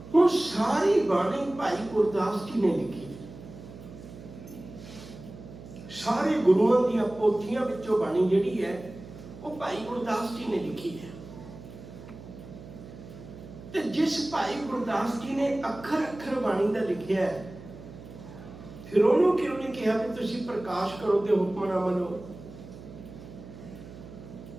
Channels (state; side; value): noise; right; hum, 15 dB below the sound